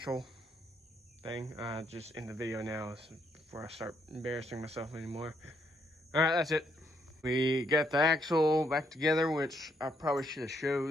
thing. Just in the video now before I start embarrassing myself anymore. All right, that's it. We got the axle back together, which I probably should have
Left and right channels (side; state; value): both; normal; correlation 0.73